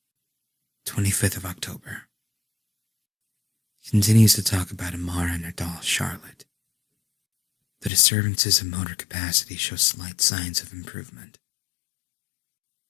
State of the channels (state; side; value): drops out; right; at 7.9 s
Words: 25th of October. Continues to talk about Amara and her doll, Charlotte. The disturbances of motor capacity show slight signs of improvement.